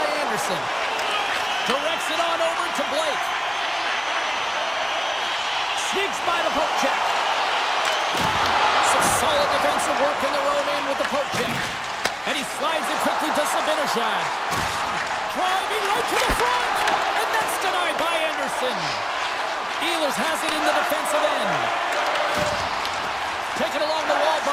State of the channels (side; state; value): both; identical; correlation 1.00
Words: Anderson. Directs it on over to Blake. Sneaks by the poke check. Some solid defensive work in their own end with the poke check. And he slides it quickly to Sabinishad. Driving right to the front. And that's denied by Anderson. Ehlers has it in the defensive end. Taken along the wall